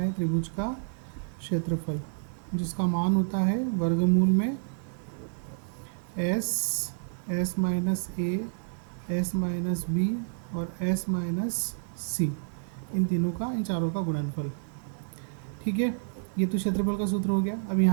त्रिभुज का क्षेत्रफल, जिसका मान होता है वर्गमूल में S minus A, S minus B और एस माइनस सी, इन तीनों का, इन चारों का गुणनफल। ठीक है, ये तो क्षेत्रफल का सूत्र हो गया। अब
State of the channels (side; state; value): left; silent; digital silence